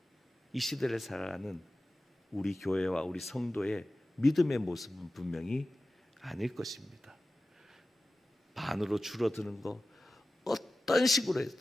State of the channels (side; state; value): both; normal; correlation 0.96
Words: 우리 교회와 우리 성도의 믿음의 모습은 분명히 아닐 것입니다. 반으로 줄어드는 거 어떤